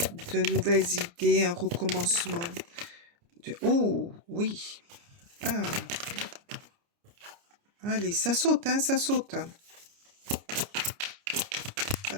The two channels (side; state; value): left; late; 29 ms